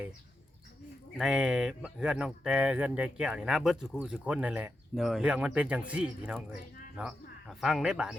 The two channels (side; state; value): both; normal; correlation 0.87